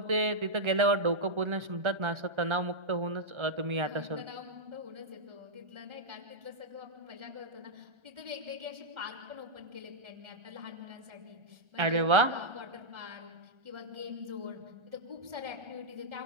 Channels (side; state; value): left; late; 1.3 ms